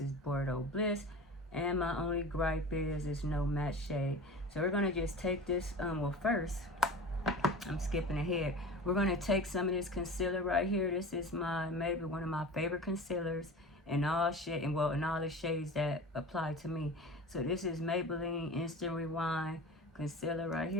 is Bordeaux Bliss. And my only gripe is there's no matte shade. So we're going to just take this, well first, I'm skipping ahead. We're going to take some of this concealer right here. This is maybe one of my favorite concealers in all in all the shades that apply to me. So this is Maybelline Instant Rewind concealer right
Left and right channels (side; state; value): both; normal; correlation 0.35